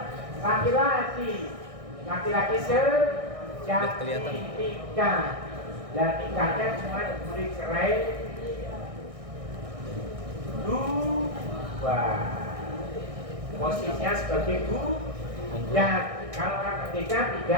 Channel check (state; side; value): late; left; 1.6 ms